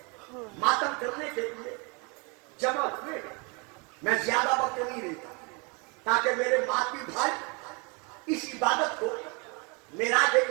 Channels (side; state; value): left; quieter; 31.5 dB